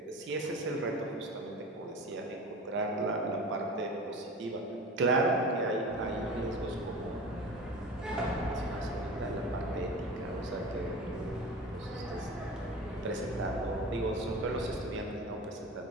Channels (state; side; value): normal; both; correlation 0.34